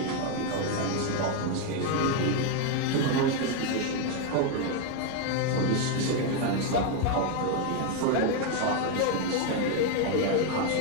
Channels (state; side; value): different; both; correlation 0.01